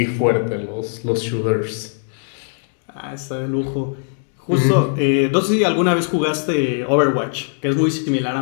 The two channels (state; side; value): silent; right; digital silence